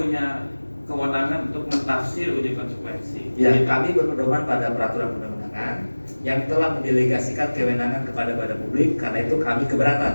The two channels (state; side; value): inverted; both; correlation -1.00